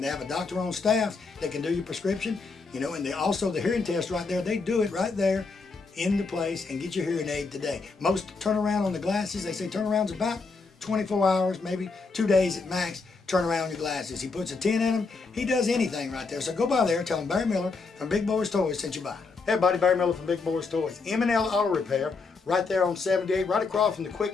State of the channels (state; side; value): quieter; right; 4.3 dB